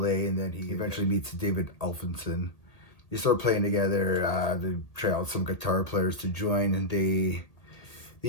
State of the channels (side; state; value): right; late; 1.8 ms